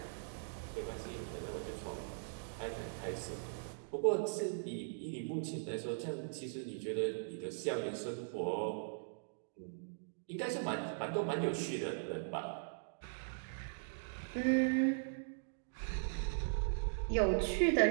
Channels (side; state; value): left; silent; digital silence